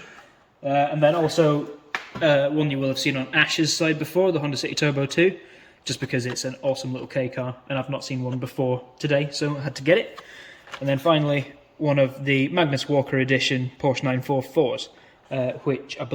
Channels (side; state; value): both; identical; correlation 1.00